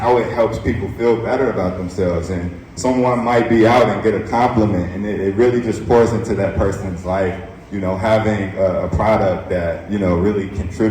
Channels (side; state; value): both; identical; correlation 1.00